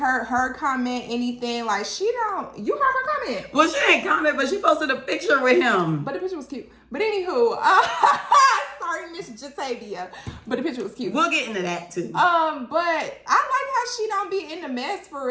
her comment anything. Like, you heard her comment. Well, she didn't comment, but she posted a picture with him. But the picture was cute. But anywho, sorry, Miss Jatavia. But the picture was cute. We'll get into that too. But I like how she don't be in the mess for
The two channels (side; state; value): both; identical; correlation 1.00